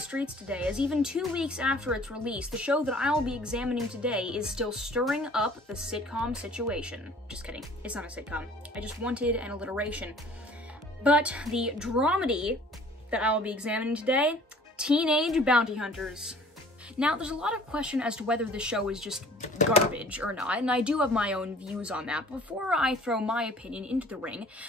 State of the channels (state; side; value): normal; both; correlation 0.51